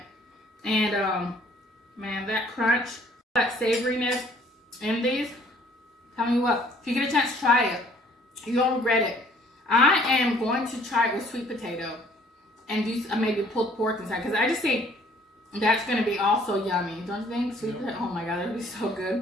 And man, that crunch, that savoriness in these. Tell me what, if you get a chance to try it, you won't regret it. I am going to try it with sweet potato and do maybe pulled pork inside because I just think that's going to be also yummy. Don't you think? Sweet potato, oh my god, that would be so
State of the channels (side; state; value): both; normal; correlation 0.58